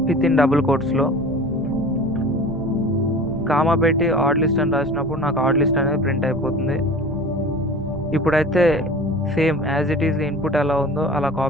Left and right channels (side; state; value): right; noise; rumble, 18 dB below the sound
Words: విత్ ఇన్ డబుల్ కోట్స్లో. కామా పెట్టి ఆడ్ లిస్ట్ అని రాసినప్పుడు నాకు ఆడ్ లిస్ట్ అనేది ప్రింట్ అయిపోతుంది. ఇప్పుడైతే same as it is input ఎలా ఉందో అలా